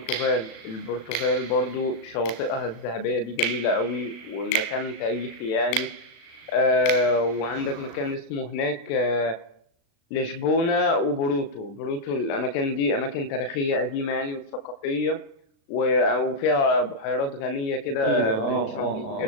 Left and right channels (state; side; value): late; right; 36 ms